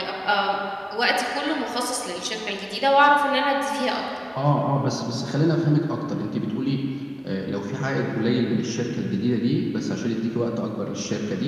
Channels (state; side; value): identical; both; correlation 1.00